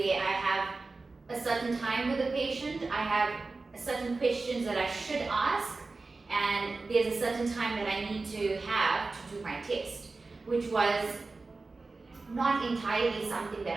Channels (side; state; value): left; quieter; 3.7 dB